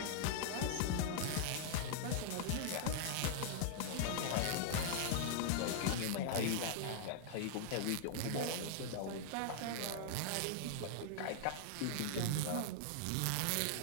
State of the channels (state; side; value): different; both; correlation -0.01